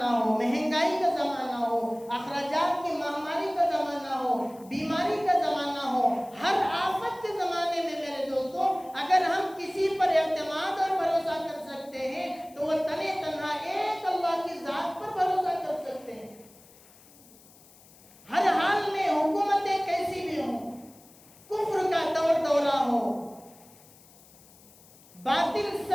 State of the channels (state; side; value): noise; left; hiss, 25 dB below the sound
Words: ہو، مہنگائی کا زمانہ ہو، اخراجات کی مہاماری کا زمانہ ہو، بیماری کا زمانہ ہو، ہر آفت کے زمانے میں میرے دوستو اگر ہم کسی پر اعتماد اور بھروسہ کر سکتے ہیں تو وہ تنے تنہا ایک اللہ کی ذات پر بھروسہ کر سکتے ہیں۔ ہر حال میں حکومتیں کیسی بھی ہوں، کفر کا دورہ ہو، باطل